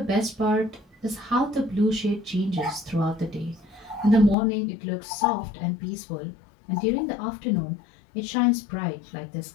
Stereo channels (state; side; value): drops out; right; at 4.4 s